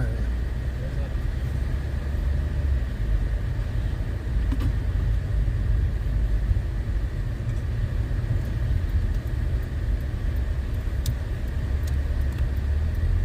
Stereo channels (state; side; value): identical; both; correlation 1.00